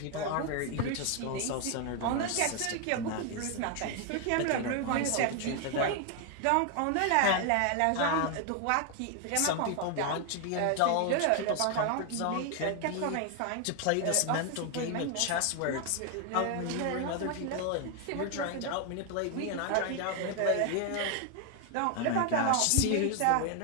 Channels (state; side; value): different; both; correlation 0.00